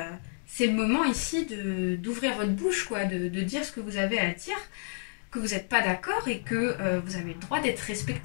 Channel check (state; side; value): silent; right; digital silence